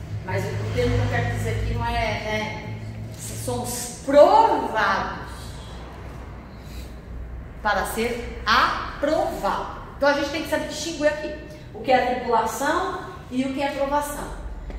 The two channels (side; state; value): both; identical; correlation 1.00